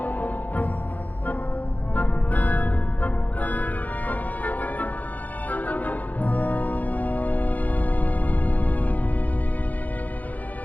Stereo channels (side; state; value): right; late; 0.080 ms